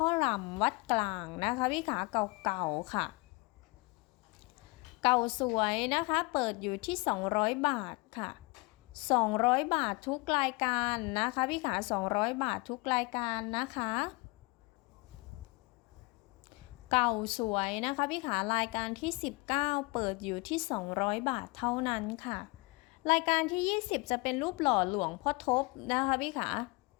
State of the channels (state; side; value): quieter; right; 26.6 dB